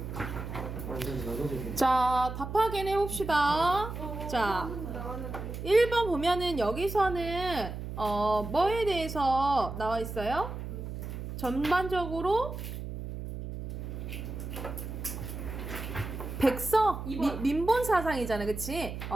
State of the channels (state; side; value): noise; right; hum, 7 dB below the sound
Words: 완전 나눠줄게 자, 답 확인해봅시다. 자, 1번 보면은 여기서는 뭐에 대해서 나와 있어요? 전반적으로 백성, 이번. 민본 사상이잖아, 그치?